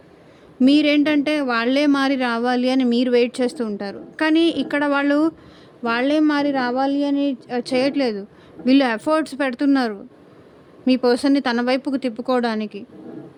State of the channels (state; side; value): identical; both; correlation 1.00